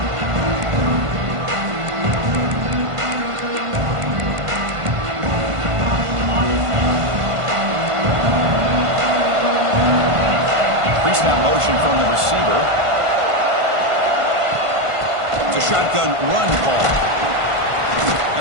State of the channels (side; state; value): left; late; 1.5 ms